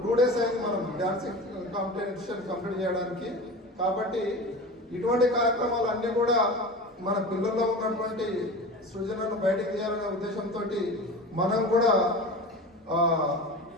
2 days అయింది మనం డ్యాన్సింగ్ కాంపిటీషన్ కంప్లీట్ చేయడానికి. కాబట్టి ఇటువంటి కార్యక్రమాలు అన్నీ కూడా మన పిల్లల్లో ఉన్నటువంటి సృజనను బయటకు తీయాలనే ఉద్దేశంతో మనం కూడా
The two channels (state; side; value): normal; both; correlation 0.32